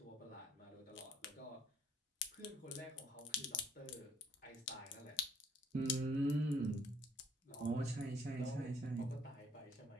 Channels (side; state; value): both; normal; correlation 0.64